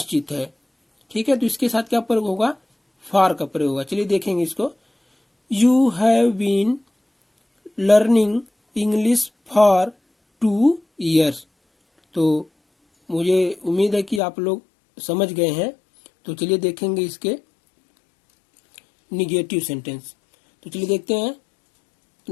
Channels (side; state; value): right; drops out; at 14.2 s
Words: है, ठीक है। तो इसके साथ क्या प्रयोग होगा, फॉर का प्रयोग होगा। चलिए देखेंगे इसको। You have been learning English for 2 years. तो मुझे उम्मीद है कि आप लोग समझ गए हैं। तो चलिए देखेंगे इसके निगेटिव सेंटेंस। तो चलिए देखते हैं